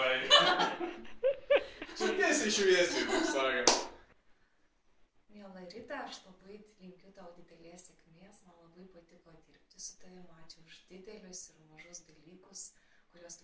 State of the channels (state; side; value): identical; both; correlation 1.00